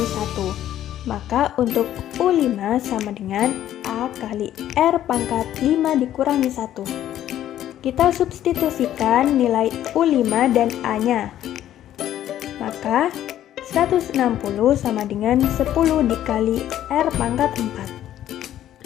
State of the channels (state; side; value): quieter; right; 12.0 dB